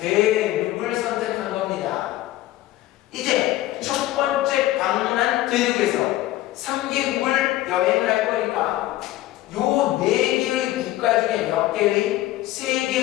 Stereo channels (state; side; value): quieter; right; 15.6 dB